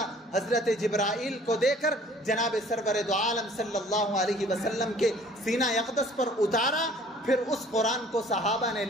حضرت جبرائیل کو دے کر جناب سرور دو عالم صلی اللہ علیہ وسلم کے سینہ اقدس پر اتارا. پھر اس قرآن کو صحابہ نے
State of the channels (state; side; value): normal; both; correlation 0.53